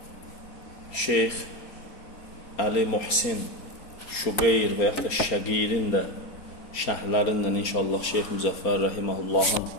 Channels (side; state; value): right; late; 4.3 ms